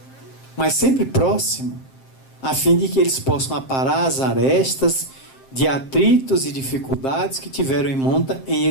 mas sempre próximo, a fim de que eles possam aparar as arestas de atritos e dificuldades que tiveram em monta em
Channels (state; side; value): late; right; 7.6 ms